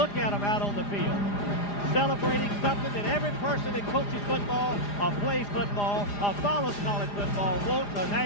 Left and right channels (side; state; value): right; late; 4.9 ms